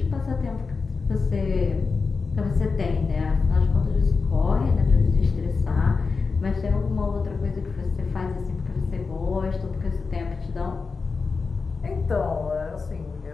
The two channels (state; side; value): quieter; right; 4.6 dB